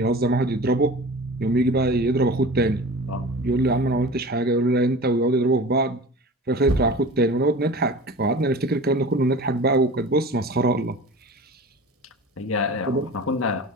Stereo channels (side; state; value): both; normal; correlation 0.37